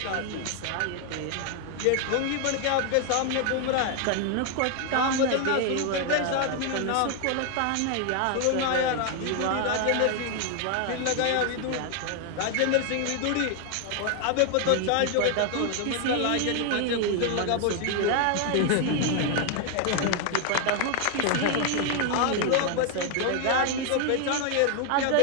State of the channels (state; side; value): different; both; correlation 0.00